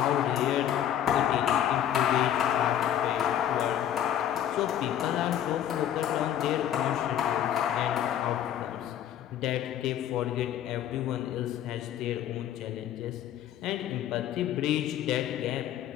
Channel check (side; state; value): right; quieter; 10.7 dB